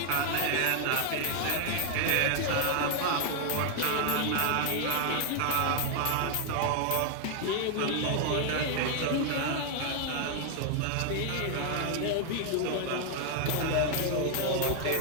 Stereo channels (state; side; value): different; both; correlation 0.00